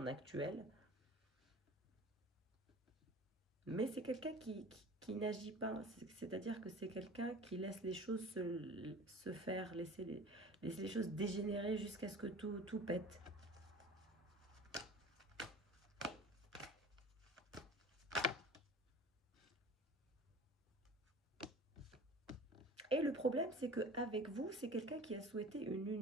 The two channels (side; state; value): both; normal; correlation 0.40